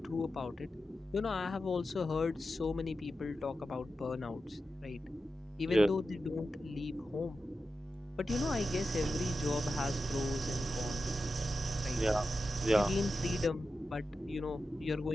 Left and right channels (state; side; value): normal; both; correlation 0.91